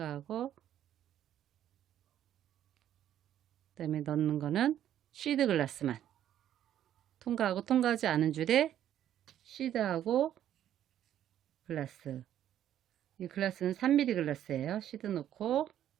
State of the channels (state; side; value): quieter; left; 11.1 dB